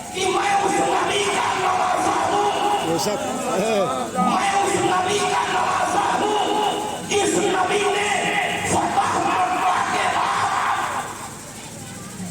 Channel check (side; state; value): right; noise; hum, 27 dB below the sound